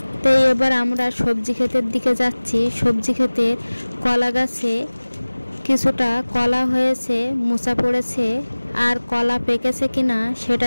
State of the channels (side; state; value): both; inverted; correlation -1.00